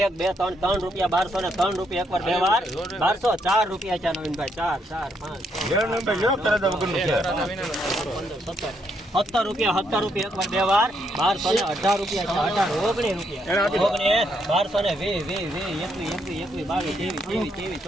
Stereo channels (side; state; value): both; normal; correlation 0.75